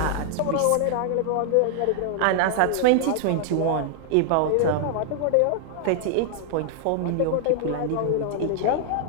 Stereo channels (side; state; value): both; different; correlation 0.00